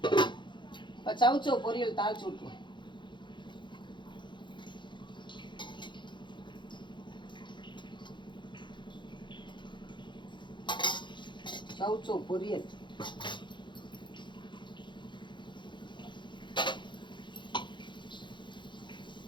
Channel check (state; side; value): late; right; 0.23 ms